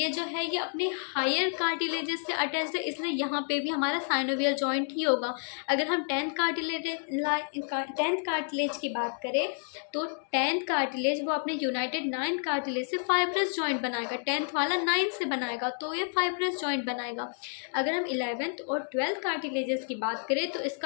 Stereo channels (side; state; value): right; silent; 58 dB below the other